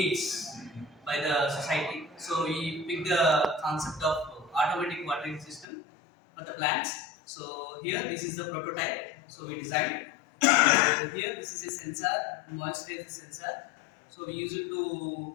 by the society. So we picked the concept of automatic watering system for the plants. So here this is the prototype. So we designed So here this is a sensor, moisture is a sensor. So we use it to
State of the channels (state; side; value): drops out; right; at 5.7 s